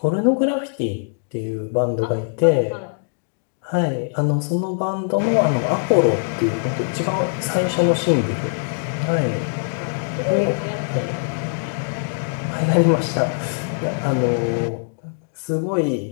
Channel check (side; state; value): right; silent; digital silence